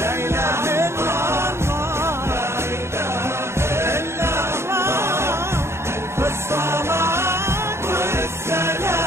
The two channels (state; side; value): late; left; 0.13 ms